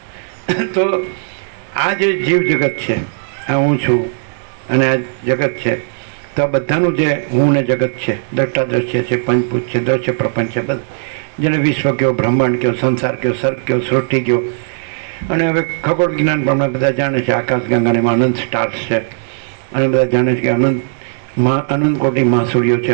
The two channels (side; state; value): left; silent; digital silence